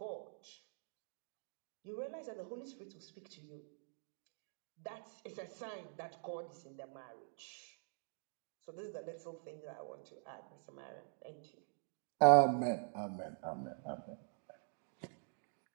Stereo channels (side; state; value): left; silent; digital silence